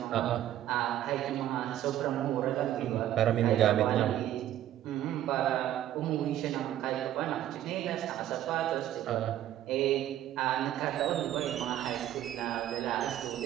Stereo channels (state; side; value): quieter; left; 12.4 dB